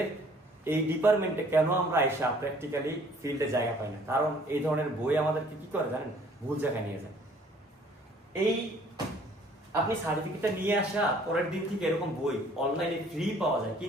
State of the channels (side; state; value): both; normal; correlation 0.57